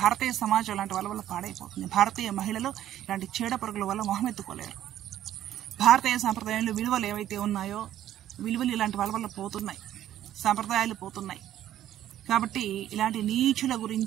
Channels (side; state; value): left; quieter; 12.1 dB